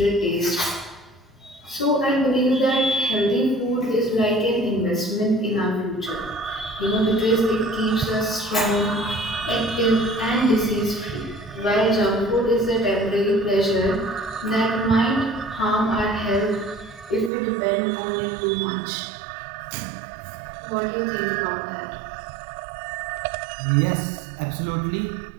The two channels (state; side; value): drops out; left; at 17.3 s